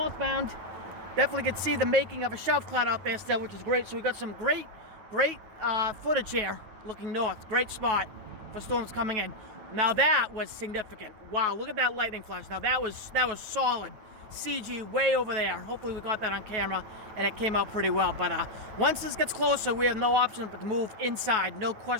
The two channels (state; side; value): late; left; 9.2 ms